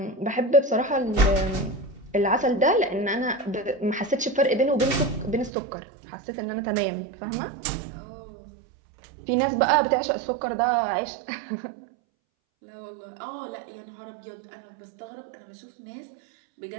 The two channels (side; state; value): left; drops out; at 5.5 s